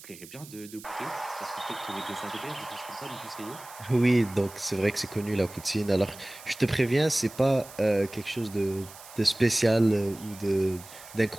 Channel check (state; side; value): noise; right; hiss, 18 dB below the sound